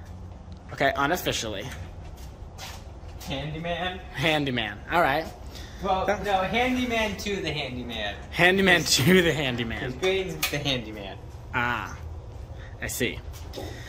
Okay, unofficially. Handyman? Handyman, all right. Well, no, handyman to the handyman. Handyman to the handyman. His grade's the handyman. Ah, I see.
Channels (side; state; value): both; identical; correlation 1.00